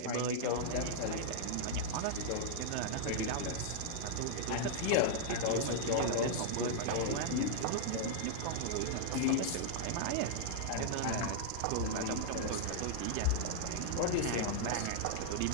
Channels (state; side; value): different; both; correlation -0.01